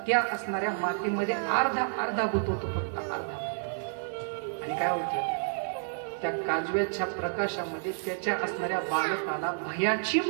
त्या असणाऱ्या मातीमध्ये अर्धा गुंतवतो, फक्त अर्धा. आणि काय होतं, त्या काजव्याच्या प्रकाशामध्ये त्याच्या असणाऱ्या बालकाला भयाची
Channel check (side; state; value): left; silent; digital silence